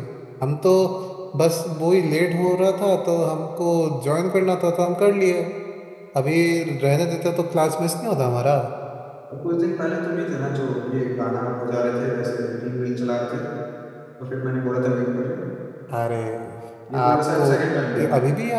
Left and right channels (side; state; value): both; identical; correlation 1.00